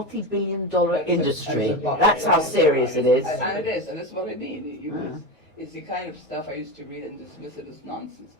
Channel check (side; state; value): both; normal; correlation 0.20